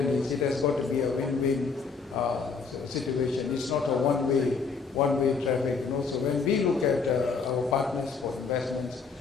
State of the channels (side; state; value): right; quieter; 5.1 dB